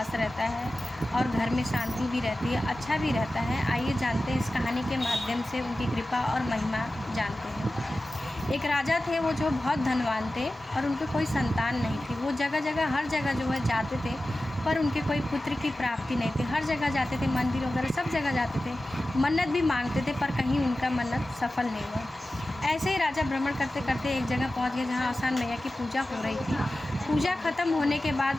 रहता है और घर में शांति भी रहती है, अच्छा भी रहता है। आइए जानते हैं इस कहानी के माध्यम से उनकी कृपा और महिमा जानते हैं। एक राजा थे, वो जो बहुत धनवान थे और उनके कोई संतान नहीं थी। वो जगह जगह हर जगह जो है जाते थे, पर उनके कोई पुत्र की प्राप्ति नहीं थी। हर जगह जाते थे, मंदिर वगैरह सब जगह जाते थे, मन्नत भी मांगते थे, पर कहीं उनका मन्नत सफल नहीं हुआ। ऐसे ही राजा भ्रमण करते करते एक जगह पहुंच गए जहां आसान मैया की पूजा हो रही थी। पूजा ख़त्म होने के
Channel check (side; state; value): both; normal; correlation 0.95